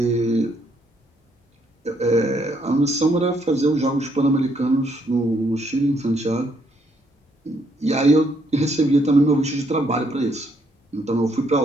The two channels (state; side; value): normal; both; correlation 0.71